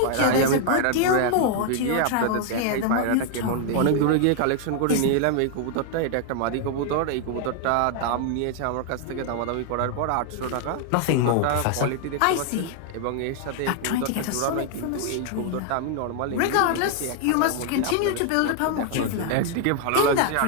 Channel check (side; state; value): both; different; correlation 0.00